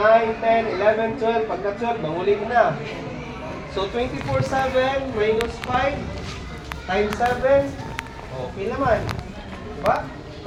10, 11, 12 pagka 12 manguli na so 24/7 minus 5 times 7 pila man diba?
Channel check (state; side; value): identical; both; correlation 1.00